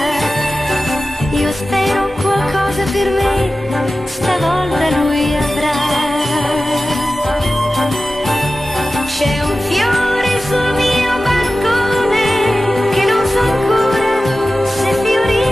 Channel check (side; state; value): both; normal; correlation 0.95